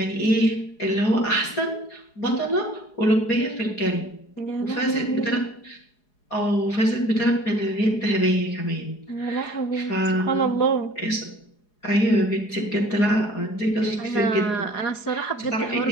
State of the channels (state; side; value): late; right; 4.8 ms